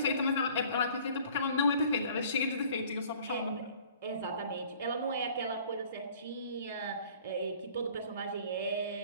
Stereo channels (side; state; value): both; inverted; correlation -0.52